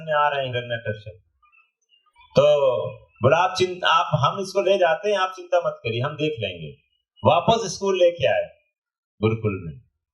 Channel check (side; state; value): both; identical; correlation 1.00